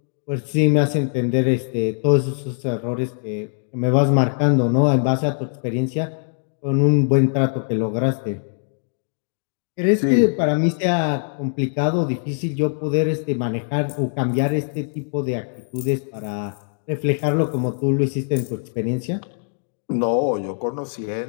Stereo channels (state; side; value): silent; right; digital silence